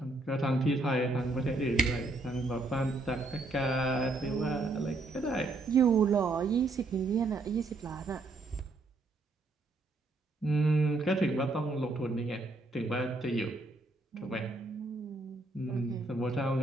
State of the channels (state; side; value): quieter; left; 3.0 dB